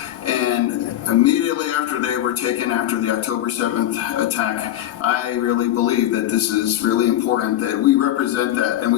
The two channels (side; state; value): right; quieter; 12.8 dB